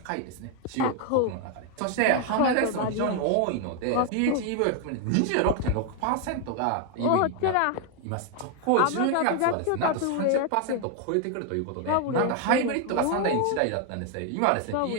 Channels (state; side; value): different; both; correlation 0.01